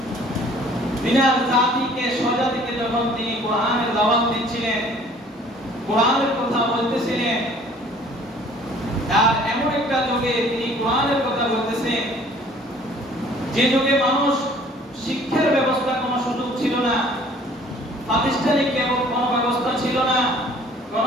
বিনার জাতিকে, স্বজাতিকে যখন তিনি কোরআনের দাওয়াত দিচ্ছিলেন, কোরআনের কথা বলতেছিলেন, আর এমন একটা যুগে তিনি কোরআনের কথা বলতেছেন যে যুগে মানুষ শিক্ষার ব্যবস্থা কোনো সুযোগ ছিল না, প্রাতিষ্ঠানিক এবং কোনো ব্যবস্থা ছিল না,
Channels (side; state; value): both; normal; correlation 0.54